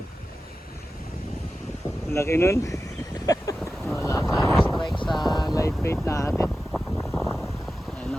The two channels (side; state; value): both; normal; correlation 0.93